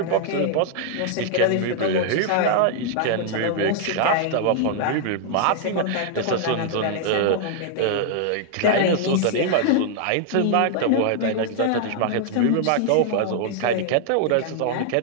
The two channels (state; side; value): different; both; correlation 0.00